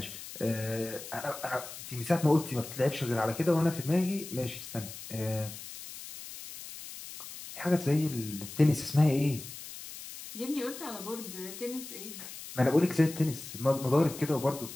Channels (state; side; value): noise; left; hiss, 12 dB below the sound